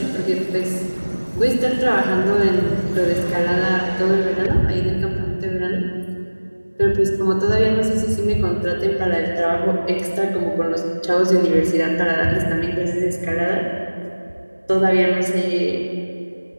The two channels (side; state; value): both; inverted; correlation -1.00